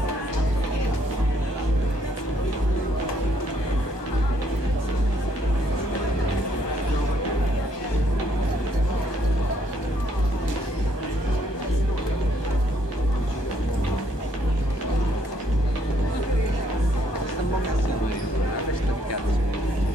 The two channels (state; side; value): late; right; 1.2 ms